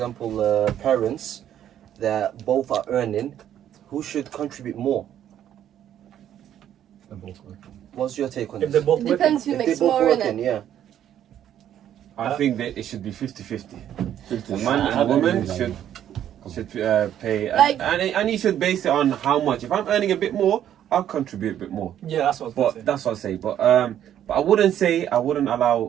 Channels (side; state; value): left; quieter; 10.7 dB